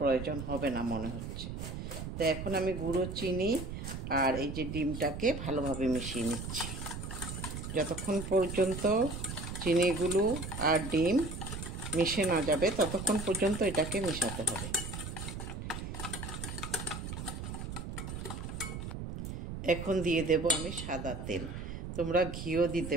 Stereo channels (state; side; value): noise; right; rumble, 7 dB below the sound